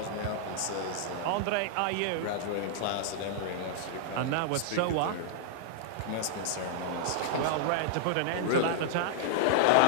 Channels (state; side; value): different; both; correlation -0.01